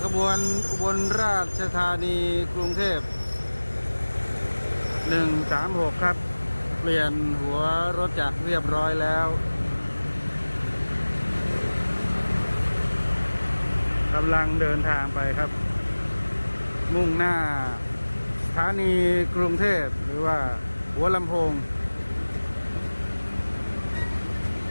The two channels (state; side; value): inverted; both; correlation -1.00